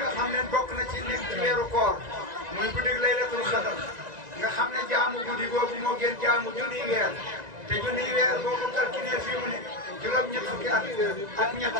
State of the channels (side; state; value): left; late; 1.9 ms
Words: nga xam ne bokk na ci nekk ci weeru koor muy guddi laylatul xadar nga xam ne jaamu guddi googu moo gën jaamu junniy weer te junniy weer boo ko calculé fii mu ne juróom-ñett fukki at